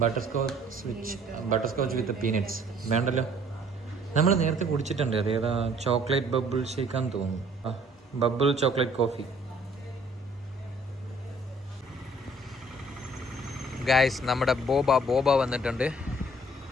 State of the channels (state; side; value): normal; both; correlation 0.58